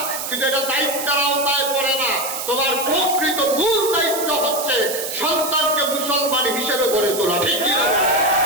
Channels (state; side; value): noise; right; hiss, 5 dB below the sound